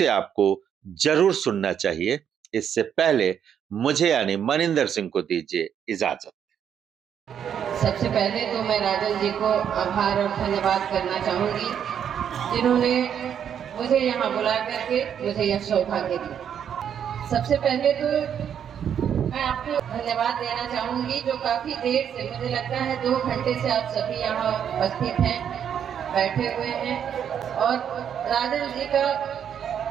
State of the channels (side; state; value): left; quieter; 8.6 dB